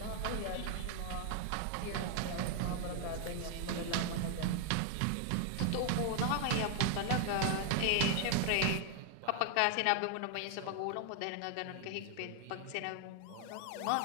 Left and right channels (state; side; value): different; both; correlation 0.00